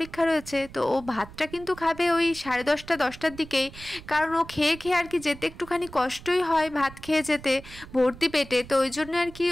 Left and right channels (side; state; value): right; noise; rumble, 17 dB below the sound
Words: রয়েছে। তো ও ভাতটা কিন্তু খাবে ওই 10:30-10টার দিকেই, কারণ ও খেয়ে খেয়ে আর কি যেতে একটুখানি কষ্টই হয়, ভাত খেয়ে যেতে ভর্তি পেটে। তো ওই জন্য আর কি